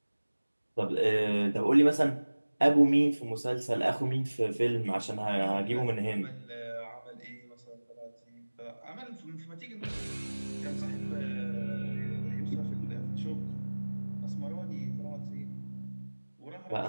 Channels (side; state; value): both; inverted; correlation -1.00